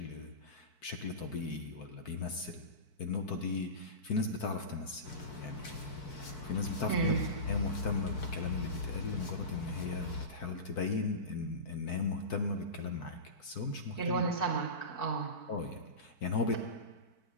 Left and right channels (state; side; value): late; right; 4.6 ms